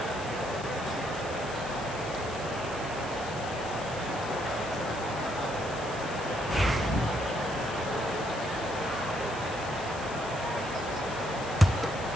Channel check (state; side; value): noise; left; hiss, 15 dB below the sound